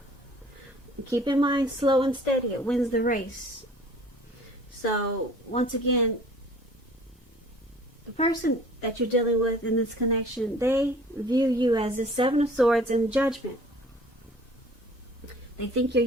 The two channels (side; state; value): both; normal; correlation 0.50